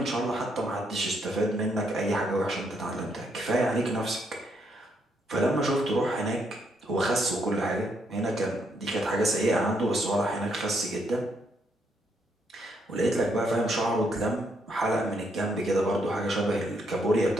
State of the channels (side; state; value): both; normal; correlation 0.75